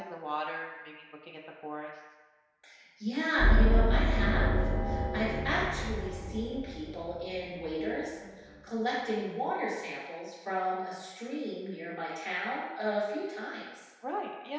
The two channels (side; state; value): both; identical; correlation 1.00